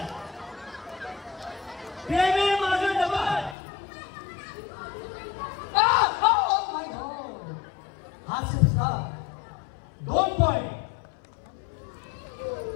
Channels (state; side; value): drops out; right; at 3.6 s